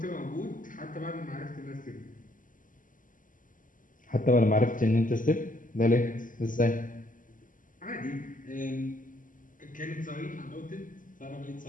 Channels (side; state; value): right; late; 0.38 ms